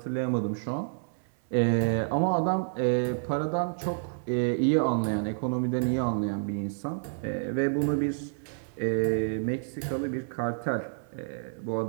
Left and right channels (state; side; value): silent; left; digital silence